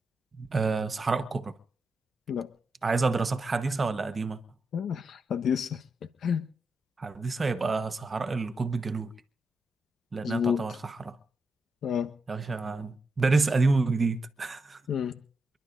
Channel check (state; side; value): normal; both; correlation 0.85